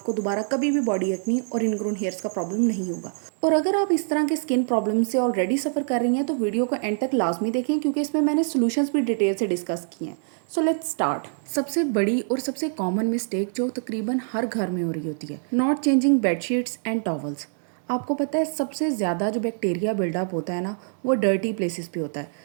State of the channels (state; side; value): silent; left; digital silence